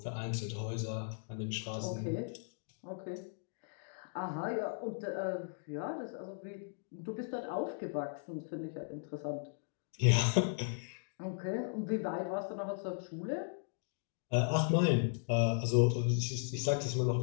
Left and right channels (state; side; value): silent; right; digital silence